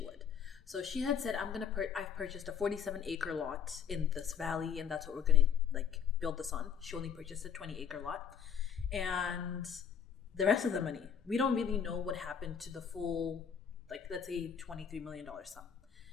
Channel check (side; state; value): right; quieter; 7.6 dB